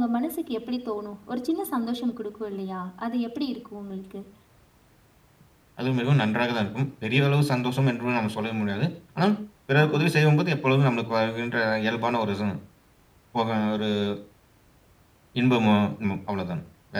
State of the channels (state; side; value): identical; both; correlation 1.00